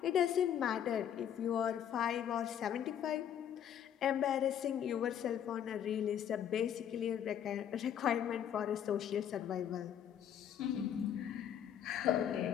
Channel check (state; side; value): quieter; right; 9.5 dB